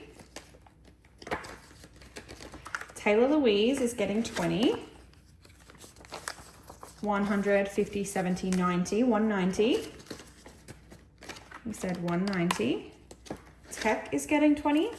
Taylah Louise is getting 20. 100, 50, 70, 90, 190. We said 190. Tech is getting 20.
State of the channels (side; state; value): both; identical; correlation 1.00